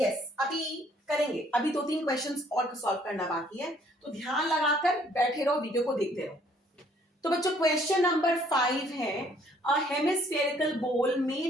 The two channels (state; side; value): normal; both; correlation 0.62